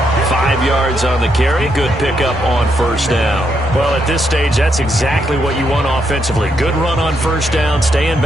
5 yards on the carry. Good pickup on 1st down. Well, at this stage, that's exactly what you want offensively. Good run on 1st down. Stay in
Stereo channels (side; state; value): both; normal; correlation 0.78